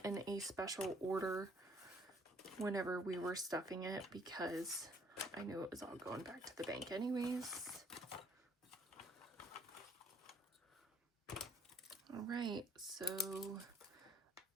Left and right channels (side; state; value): both; normal; correlation 0.62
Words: in a special order whenever we were stuffing it, because I knew it was all going back to the bank anyways. All right, so